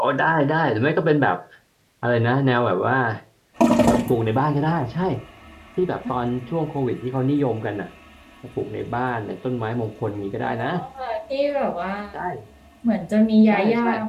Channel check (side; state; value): both; identical; correlation 1.00